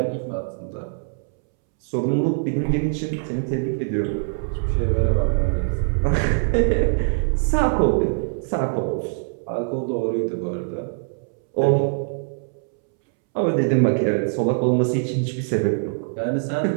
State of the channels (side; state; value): left; silent; 64 dB below the other